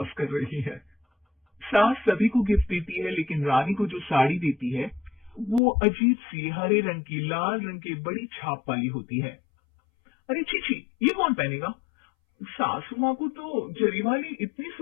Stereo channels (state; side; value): drops out; right; at 5.6 s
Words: कर रही है। सास सभी को गिफ्ट देती है, लेकिन रानी को जो साड़ी देती है वो अजीब सी हरे रंग की, लाल रंग की बड़ी छाप वाली होती है। अरे छी, ये कौन पहनेगा? सासू माँ को तो जरी वाली इतनी